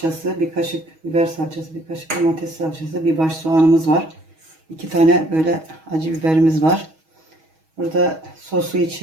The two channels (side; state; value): left; late; 6.3 ms